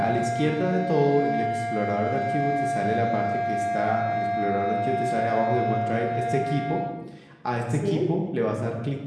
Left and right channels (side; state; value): both; identical; correlation 1.00